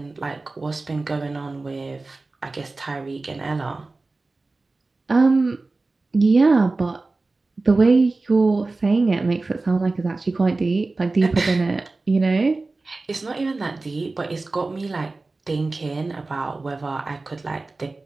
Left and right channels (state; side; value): quieter; left; 3.4 dB